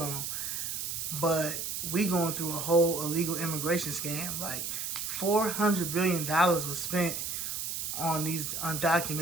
but we going through a whole illegal immigration scam. Like, $400 billion was spent on these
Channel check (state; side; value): noise; right; hiss, 3 dB below the sound